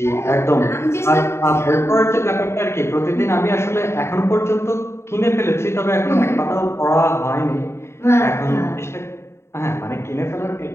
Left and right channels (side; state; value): right; late; 0.13 ms